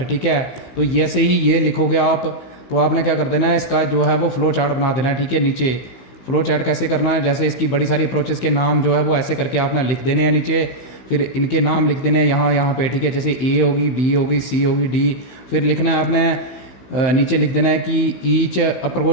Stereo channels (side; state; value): right; late; 15 ms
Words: ठीक है। तो जैसे ही ये लिखोगे आप तो आपने क्या कर देना है, इसका जो है वो फ्लो चार्ट बना देना है, ठीक है। नीचे फ्लो चार्ट कैसे करना है, जैसे इसकी बड़ी सारी अप्रोचेस के नाम जो है वो ऐसे करके आपने लिख देने हैं नीचे, फिर इनके नाम लिख देने हैं यहाँ पे, ठीक है। जैसे A होगी, B होगी, C होगी, D, फिर लिखना है आपने नीचे लिख देना है कि ईच